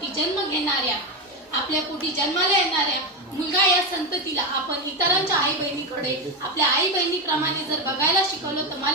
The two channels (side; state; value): both; normal; correlation 0.13